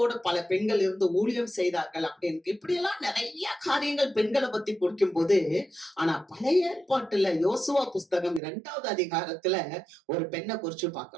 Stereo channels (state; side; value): drops out; left; at 8.4 s